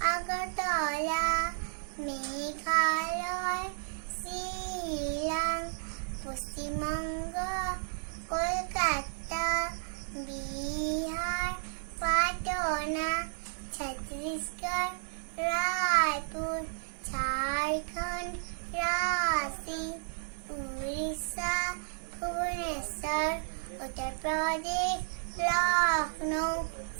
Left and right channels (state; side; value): silent; left; 56 dB below the other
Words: আগৰতলা, মেঘালয়, শ্বিলং, পশ্চিমবংগ, কলকাতা, বিহাৰ, পাটনা, ছত্তীশগড়, ৰায়পুৰ, ঝাৰখণ্ড, ৰাঁচী, উৰিষ্যা, ভুৱনেশ্বৰ, উত্তৰ প্ৰদেশ, লক্ষ্ণৌ,